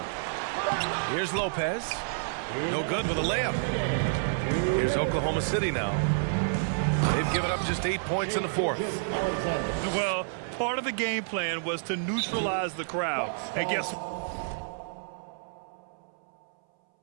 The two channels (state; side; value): silent; left; 58 dB below the other